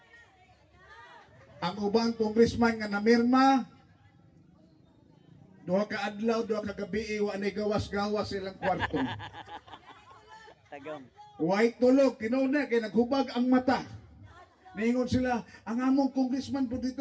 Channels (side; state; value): both; identical; correlation 1.00